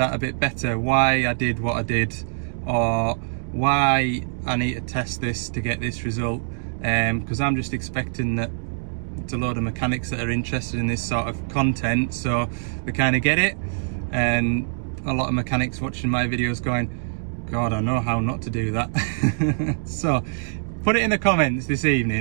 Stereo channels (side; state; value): left; silent; digital silence